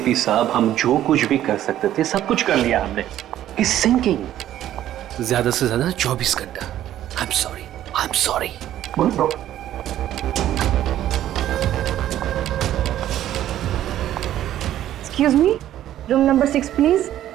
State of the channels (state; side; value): quieter; left; 12.3 dB